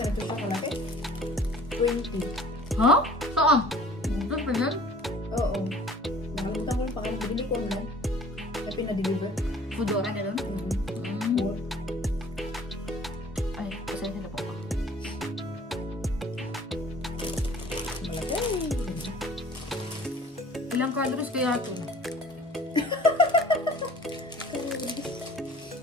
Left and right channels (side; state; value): both; normal; correlation 0.50